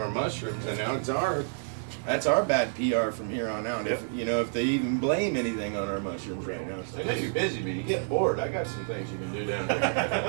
mushrooms, and now that's our bad PR from here on out. If if they even blame anything on our mushrooms right now. So I know you're busy, but you get bored. I got some things you can do down there.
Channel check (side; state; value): left; silent; digital silence